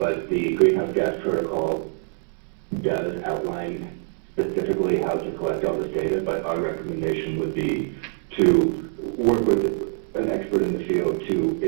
the Greenhouse Gas Protocol does outline specifically how to collect all this data, but our recommendation would be to work with an expert in the field to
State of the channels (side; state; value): left; silent; 62 dB below the other